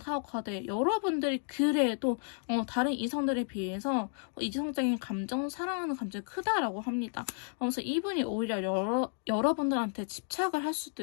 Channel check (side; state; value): right; silent; 56 dB below the other